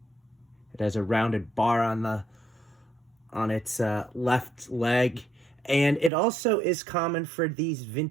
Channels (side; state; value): left; drops out; at 6.1 s